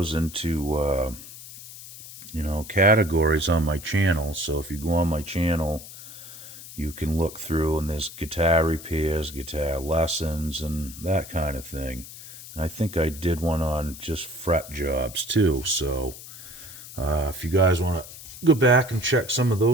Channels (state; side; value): noise; left; hiss, 15 dB below the sound